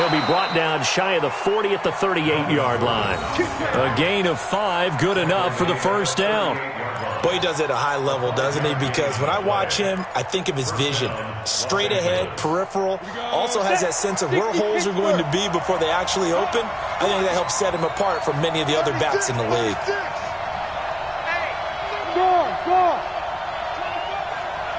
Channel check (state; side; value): identical; both; correlation 1.00